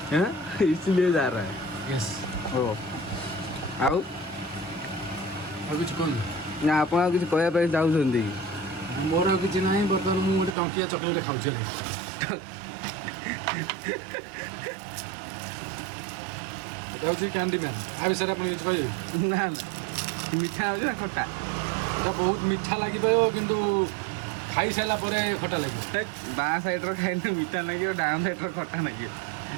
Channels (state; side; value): drops out; left; at 10.6 s